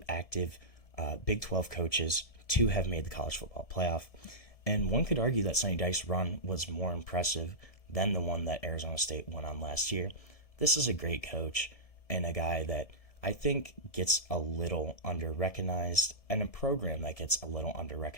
active Big 12 coaches to have made the college football playoff. And one could argue that Sonny Dykes' run was more impressive than the one that Arizona State went on last year. This is a great coach and a guy that I think gets a little under-recognized, and a program that gets a little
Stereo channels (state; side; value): late; right; 1.7 ms